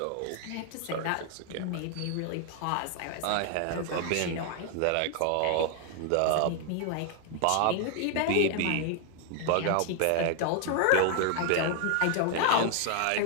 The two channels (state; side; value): different; both; correlation 0.00